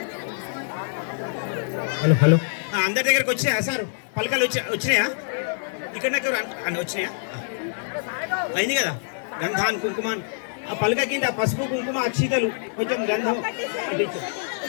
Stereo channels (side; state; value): right; silent; 62 dB below the other